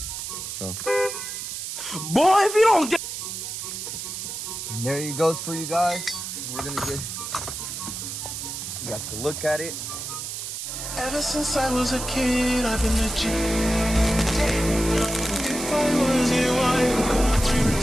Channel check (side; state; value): right; noise; hiss, 6 dB below the sound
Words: So, Boy, if you don't get. and there it goes for you guys. We're gonna get. You guys can look at it. Ever since I was a kid, I've been a G. If I was you, I would go